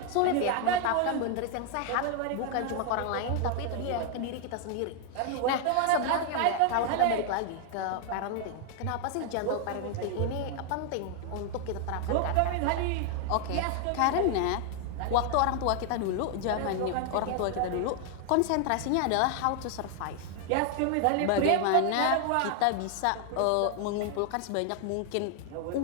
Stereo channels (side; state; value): both; different; correlation 0.00